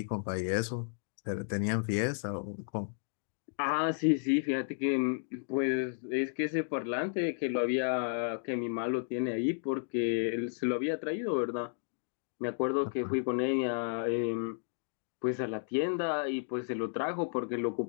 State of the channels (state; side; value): silent; right; digital silence